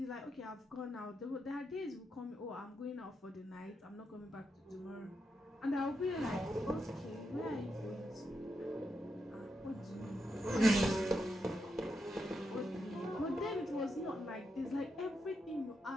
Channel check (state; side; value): normal; both; correlation 0.84